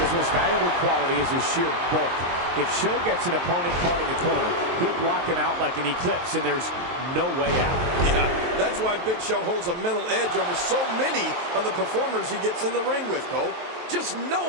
most valuable quality is his sheer bulk. If Show gets an opponent caught in the corner, he'll block him out like an eclipse, and there's no way out. Yeah, that's why Big Show holds a mental edge over so many of the performers he gets in the ring with, Cole. Just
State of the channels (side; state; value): left; late; 23 ms